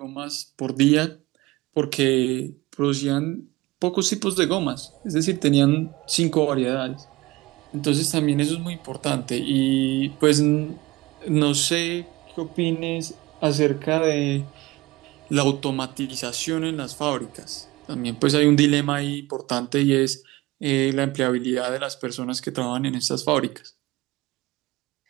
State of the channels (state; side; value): quieter; left; 20.4 dB